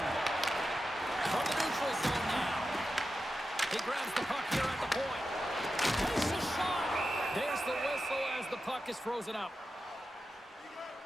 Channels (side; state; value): both; normal; correlation 0.91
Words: From the neutral zone now. He grabs the puck here at the point. Takes a shot. There's the whistle as the puck is frozen up.